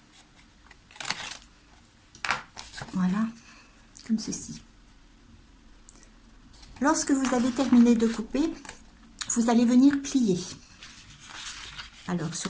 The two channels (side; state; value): both; identical; correlation 1.00